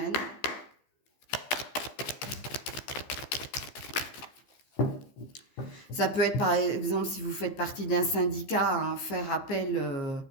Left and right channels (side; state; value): right; late; 15 ms